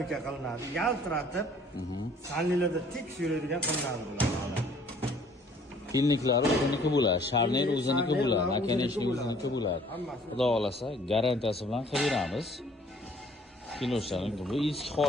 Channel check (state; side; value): normal; both; correlation 0.57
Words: qilinadi, yaltiratib, sanlilarda tik yuradigan qilinadi bular. Pilniklari o'ziniki bo'ladi, sharner o'ziniki bo'ladi, nakanechnik o'ziniki bo'ladi. Xudo xolasa garantiyasi bilan qilib beramiz. Kinoshlaring bu eski